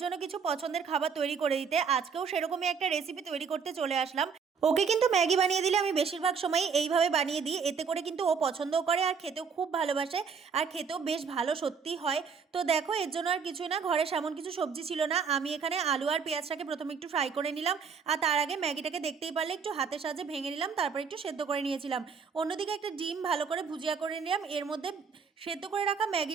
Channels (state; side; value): quieter; left; 6.0 dB